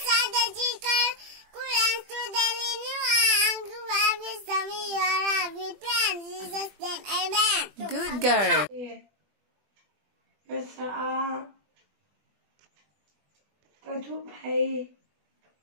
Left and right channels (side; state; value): left; late; 20 ms